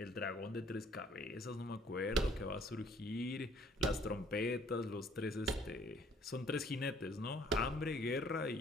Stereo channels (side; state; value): both; normal; correlation 0.60